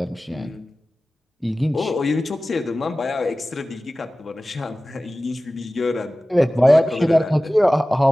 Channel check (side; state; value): both; normal; correlation 0.97